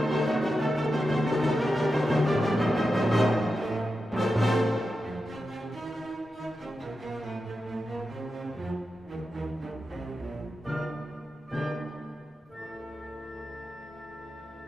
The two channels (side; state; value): both; normal; correlation 0.90